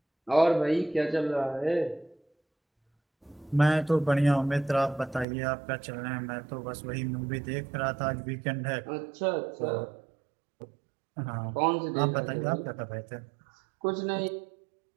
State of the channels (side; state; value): left; drops out; at 5.2 s